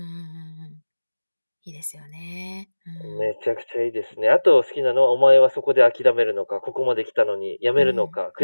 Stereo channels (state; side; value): inverted; both; correlation -1.00